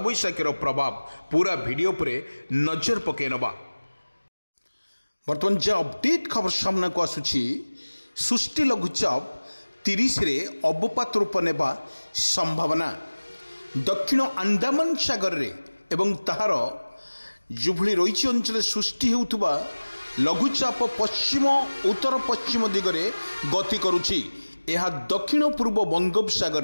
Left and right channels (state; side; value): inverted; both; correlation -1.00